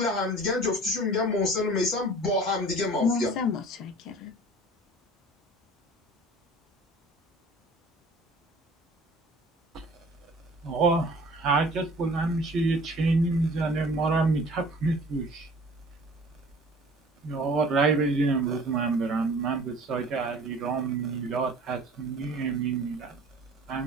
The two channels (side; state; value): both; normal; correlation 0.47